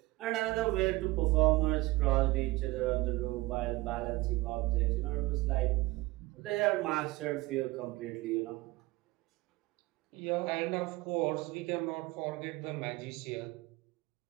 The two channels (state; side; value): quieter; left; 20.4 dB